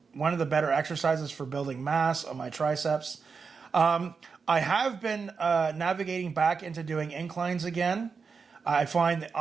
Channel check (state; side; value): quieter; left; 5.3 dB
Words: one of the better exercises for building mass on my triceps. I have been navigating back into doing inclines again. I find that